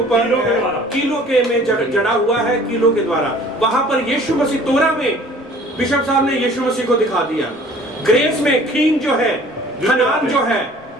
कीलों के द्वारा। कीलों के में जड़ा हुआ है, कीलों के द्वारा। वहां पर यीशु मसीह, तोरा में बिशप साहब ने यीशु मसीह को दिखा दिया। ग्रेस में खीन जो है, हनान जो है,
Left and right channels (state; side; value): normal; both; correlation 0.51